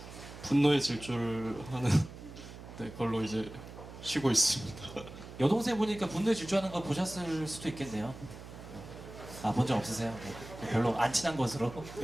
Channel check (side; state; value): right; noise; hum, 14 dB below the sound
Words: 분노의 질주하는 네, 걸로 이제 쉬고 있습니다. 여동생 보니까 분노에 질주하는 거 보셨을 수도 있겠네요. 본 적 없으세요? 네. 별로 안 친한 것으로.